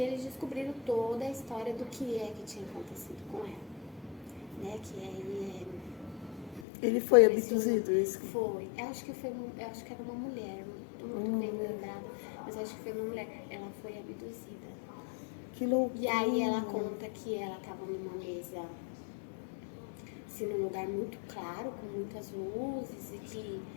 eles descobriram toda a história do que tinha acontecido com ela. Né, ele foi abduzido, isso? Foi. Eu acho que era uma mulher, muito bem lembrada, mas acho que foi uma mulher. Ela foi abduzida. Que loucura. E aí ela conta que ela estava numa mesa, assim, num lugar muito claro, com muitas luzes, e que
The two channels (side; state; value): right; drops out; at 6.7 s